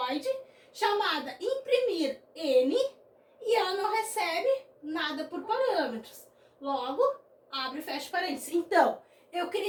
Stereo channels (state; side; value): identical; both; correlation 1.00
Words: chamada imprimir N, e ela não recebe nada por parâmetros. Logo, abre e fecha parênteses. Então, eu